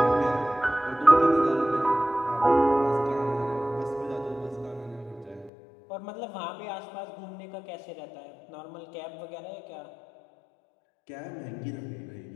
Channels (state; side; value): drops out; right; at 5.5 s